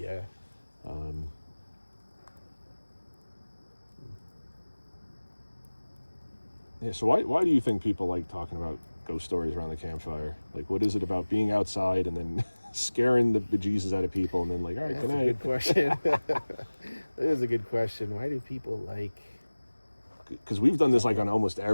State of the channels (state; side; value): inverted; both; correlation -1.00